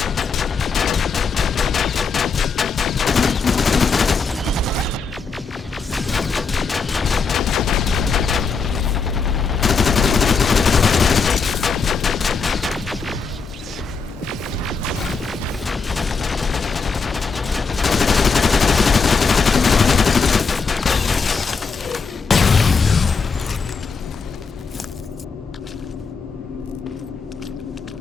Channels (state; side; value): quieter; right; 4.9 dB